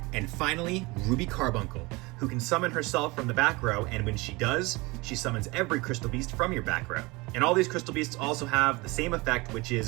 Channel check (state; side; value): quieter; left; 24.1 dB